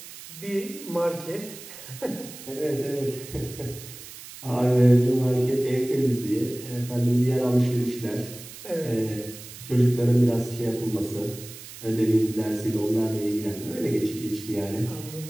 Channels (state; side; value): noise; right; hiss, 15 dB below the sound